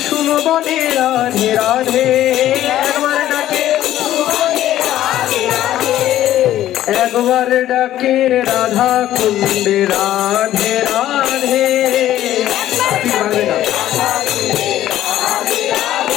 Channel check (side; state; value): right; quieter; 13.0 dB